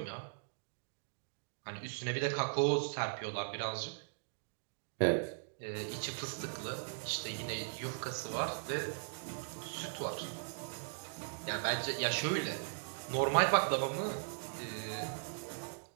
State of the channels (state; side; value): silent; left; digital silence